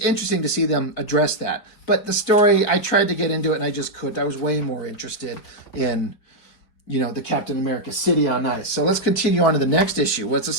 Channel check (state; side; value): late; right; 4.8 ms